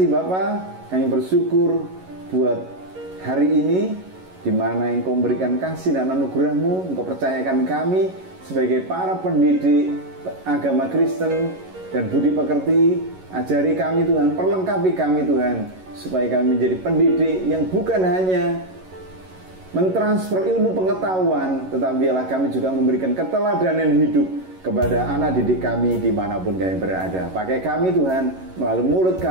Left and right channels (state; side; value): late; left; 11 ms